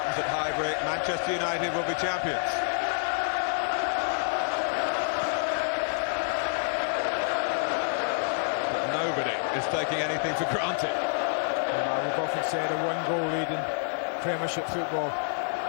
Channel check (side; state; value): right; silent; digital silence